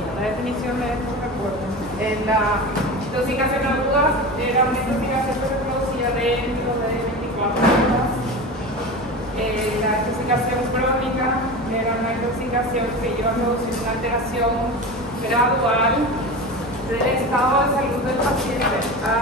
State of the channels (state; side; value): normal; both; correlation 0.28